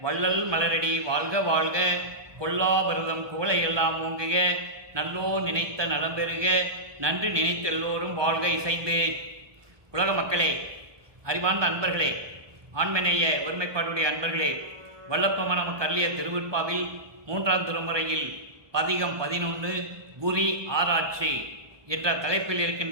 வள்ளல் மலரடி வாழ்க வாழ்க, கொல்லா வருதம் குவளை எல்லாம் ஓங்குக, நல்லோ நினைத்த நலம் பெறுக, நன்றி நினைத்த எல்லோரும் வாழ்க இசைந்து. உலக மக்களே, அறிவார்ந்த அன்பர்களே, ஆண்மநேய ஒருமைப்பாடுடைய அன்பர்களே, வல்லப்பமான நமக்கு அருளிய திருவிற்பாவில் 3ஆம் திருமுறையில் பதிகம் 11 குறி ஆராய்ச்சி என்ற தலைப்பில்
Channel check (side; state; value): left; late; 1.2 ms